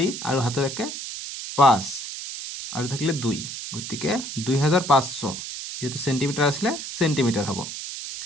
আৰু হাতৰ 1 5 আৰু থাকিলে 2, গতিকে 2500, যেহেতু চেণ্টিমিটাৰ আছিলে চেণ্টিমিটাৰ হ'ব।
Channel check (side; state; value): right; noise; hiss, 8 dB below the sound